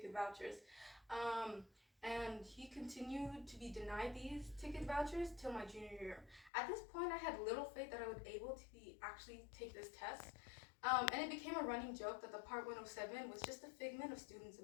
vouchers, and he continued to be denied these ticket vouchers till my junior year. At this point, I had little faith that I would be able to actually take this test, and it became a running joke that the Part 107 was just a figment of students'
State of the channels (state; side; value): drops out; right; at 6.5 s